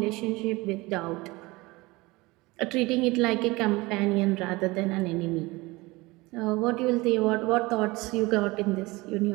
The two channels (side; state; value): left; quieter; 22.3 dB